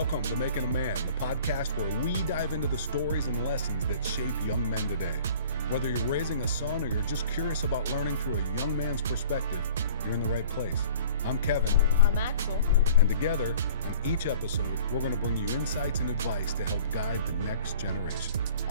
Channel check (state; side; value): inverted; both; correlation -0.48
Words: to Making a Man, the podcast where we dive into the stories and lessons that shape young men today. Whether you're raising a son or you're just curious about learning through a young man's perspective, you're in the right place. I'm Kevin. I'm Axel. And together, on each episode, we're going to bring you insights and advice to help guide the next generation.